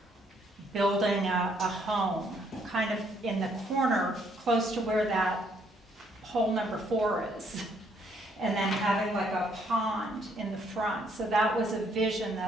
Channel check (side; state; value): both; normal; correlation 0.68